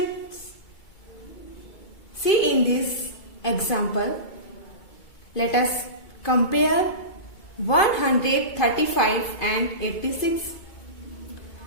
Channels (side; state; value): right; late; 2.2 ms